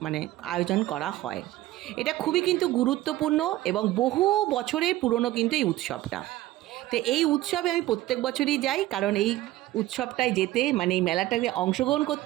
আয়োজন করা হয়। এটা খুবই কিন্তু গুরুত্বপূর্ণ এবং বহু বছরের পুরনো কিন্তু এই উৎসবটা। তো এই উৎসবে আমি প্রত্যেক বছরই যাই, কারণ এই উৎসবটায় যেতে, মানে এই মেলাটাকে অংশগ্রহণ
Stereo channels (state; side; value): quieter; left; 16.1 dB